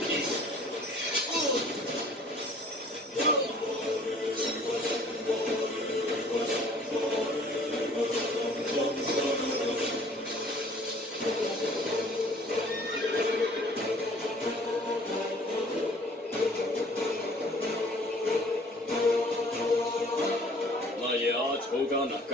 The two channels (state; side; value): normal; both; correlation 0.54